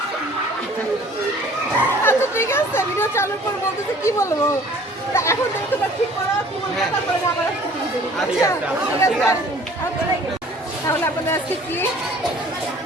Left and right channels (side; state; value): both; normal; correlation 0.52